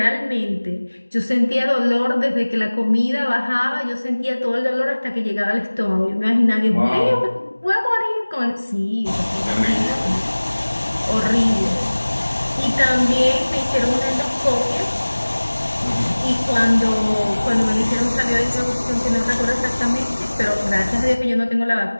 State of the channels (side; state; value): both; inverted; correlation -1.00